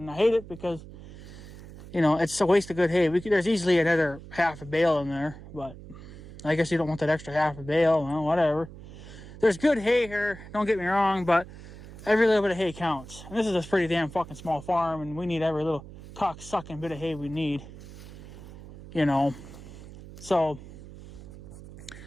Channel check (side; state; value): right; noise; hum, 16 dB below the sound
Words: I hate it because, you know, it's a waste of good hay. There's easily another half a bale in there, but I guess you don't want that extra half a bale. Well, whatever. There's good hay here, don't get me wrong, but every little bit of hay counts. And this is a pretty damn fucking small farm, and we need every little cock-sucking bit of hay we need, you know. So,